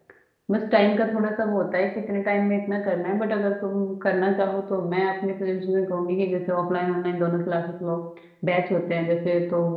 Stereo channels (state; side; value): identical; both; correlation 1.00